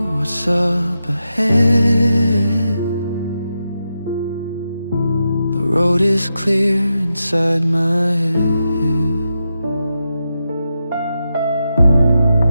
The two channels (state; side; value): inverted; both; correlation -0.87